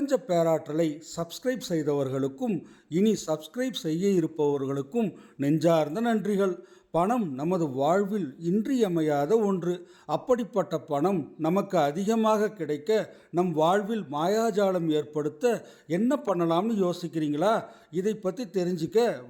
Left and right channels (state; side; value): identical; both; correlation 1.00